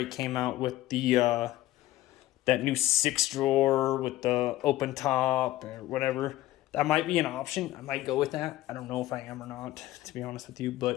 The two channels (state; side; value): quieter; right; 15.7 dB